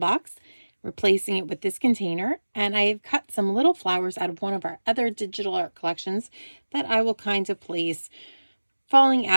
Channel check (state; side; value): inverted; both; correlation -1.00